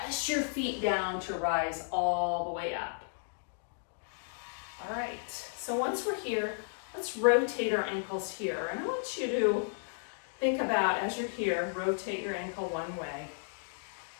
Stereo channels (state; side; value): silent; right; digital silence